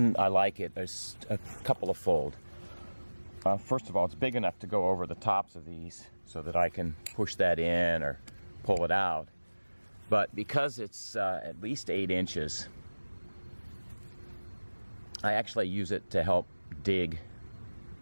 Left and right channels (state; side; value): inverted; both; correlation -1.00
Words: I like it, there's a couple of fold. First of all, it's big enough to go over the tops of these so that I can push that in or pull it out. But because it's at least 8 inches, I actually use it to help dig